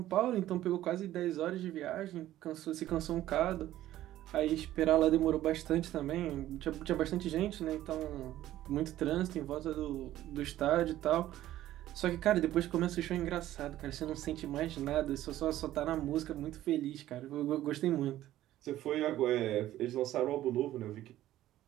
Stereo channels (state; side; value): quieter; left; 13.9 dB